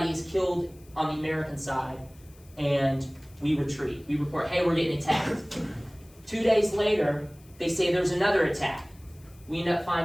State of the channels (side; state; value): left; noise; hiss, 27 dB below the sound